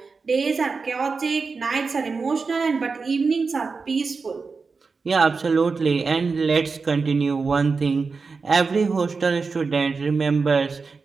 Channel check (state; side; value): quieter; left; 4.6 dB